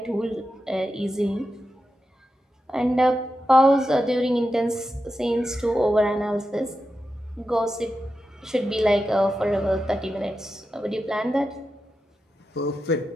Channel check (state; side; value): normal; both; correlation 0.89